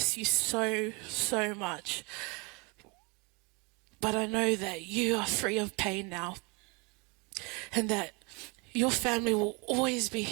you so, so much. But I know that you are free of pain now, and that your family will always be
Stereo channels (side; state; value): left; quieter; 29.1 dB